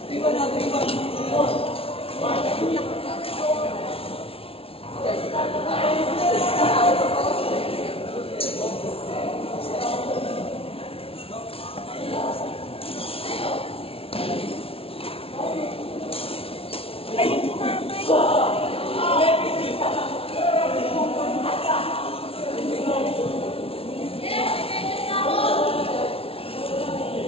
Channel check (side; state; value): right; late; 0.27 ms